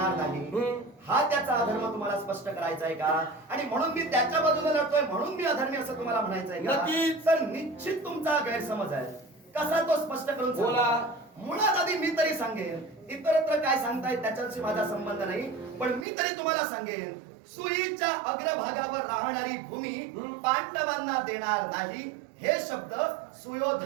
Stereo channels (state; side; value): drops out; left; at 16.1 s